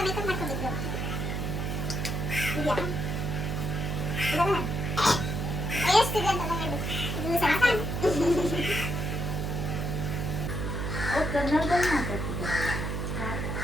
ಮೇಕಪ್ ಮಾಡ್ಕೊಂಡಿದ್ರು. ಇದೆಯಾ? ಇದನ್ನ ಎಷ್ಟಿದೆ ಅಂತ ಹೇಳು. ಇದು ಸಾಕ? ಅವ್ರು ಕನ್ನಡದಲ್ಲಿ ಮಾತಾಡ್ತಿದ್ದಾರಲ್ಲ.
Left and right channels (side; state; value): right; noise; hum, 2 dB below the sound